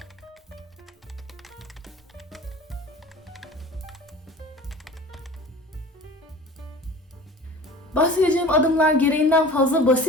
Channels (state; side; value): normal; both; correlation 0.40